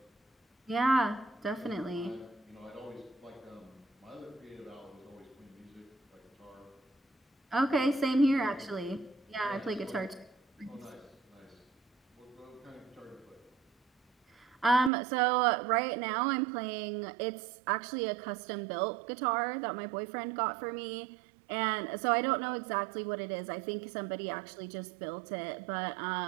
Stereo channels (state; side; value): drops out; left; at 14.9 s